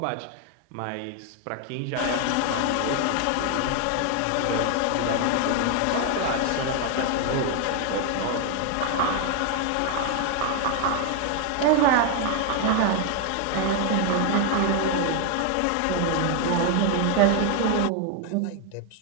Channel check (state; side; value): different; both; correlation 0.01